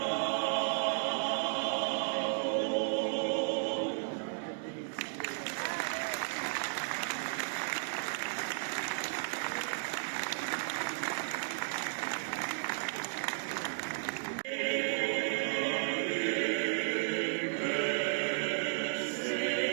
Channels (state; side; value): silent; left; digital silence